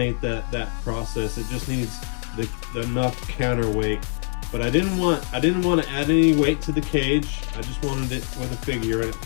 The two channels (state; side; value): silent; right; 58 dB below the other